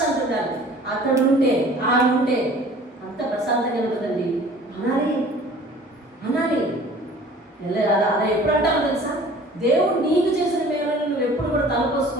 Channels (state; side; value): normal; both; correlation 0.48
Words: ఉండాలి. అక్కడ ఉంటే అంత ప్రశాంతంగా ఉంటుందండి. అనాలి అలా ఎప్పుడు అంటావు తెలుసా? దేవుడు నీకు చేసిన మేలను నువ్వు ఎప్పుడు కూడా